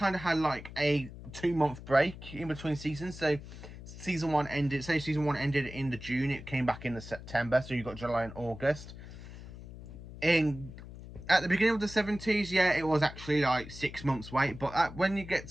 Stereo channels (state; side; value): noise; left; hum, 14 dB below the sound